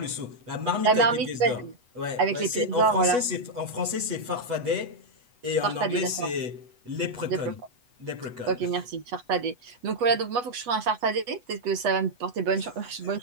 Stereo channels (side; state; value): left; late; 8.1 ms